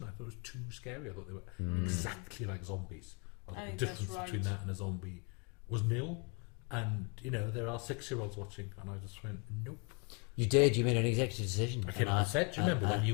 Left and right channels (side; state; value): right; quieter; 34.7 dB